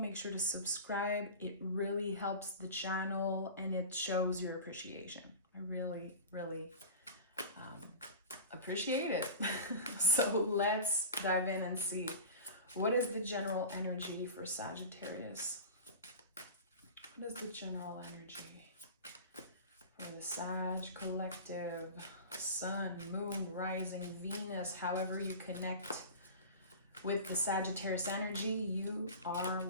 sure to subscribe. It really helps the channel and it shows your appreciation. I really appreciate it. So let's dive in and see. What is the general energy for Sagittarius? What is the general energy for the Sag collective? Sun, moon, rising, Venus, however you connect with the Sagittarius energy, you are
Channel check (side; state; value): both; inverted; correlation -0.33